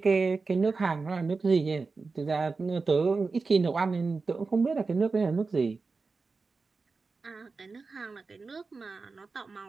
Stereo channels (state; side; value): quieter; left; 4.2 dB